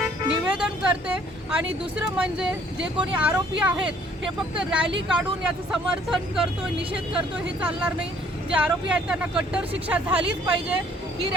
निवेदन करते। आणि दुसरं म्हणजे जे कोणी आरोपी आहेत हे फक्त रॅली काढून याचं समर्थन करतोय, निषेध करतोय, हे चालणार नाही। जे आरोपी आहेत त्यांना कट्टर शिक्षा झालीच पाहिजे। ही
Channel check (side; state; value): both; normal; correlation 0.60